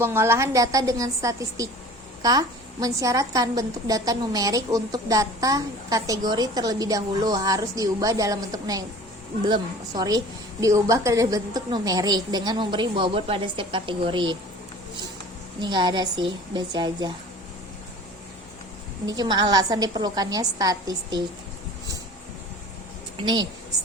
data dengan statistika mensyaratkan bentuk data numerik untuk data kategori terlebih dahulu harus diubah dalam bentuk diubah ke bentuk numerik dengan memberi bobot pada setiap kategori. Ini nggak ada sih, baca aja. Ini cuma alasan diperlukannya statistik. Nih,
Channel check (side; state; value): both; normal; correlation 0.43